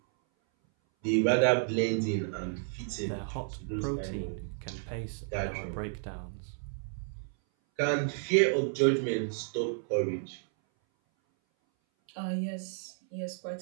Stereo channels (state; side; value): silent; left; 57 dB below the other